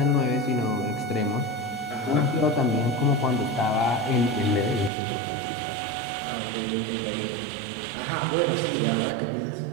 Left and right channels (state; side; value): drops out; left; at 4.9 s